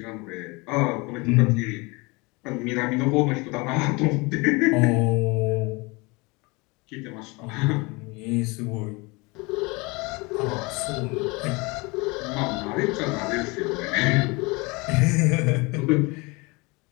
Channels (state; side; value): quieter; right; 26.3 dB